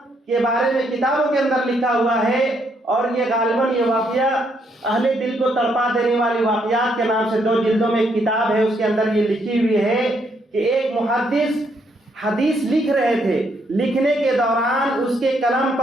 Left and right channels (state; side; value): normal; both; correlation 0.73